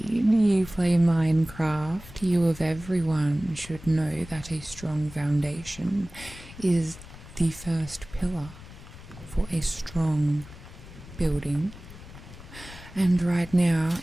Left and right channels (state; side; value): noise; left; rumble, 17 dB below the sound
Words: you play Minecraft. You of everyone should know that a strong foundation is the first pillar for a strong building. And right now